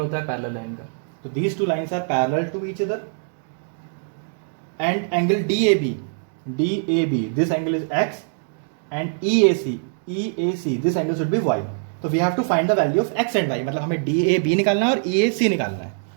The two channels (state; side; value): silent; left; digital silence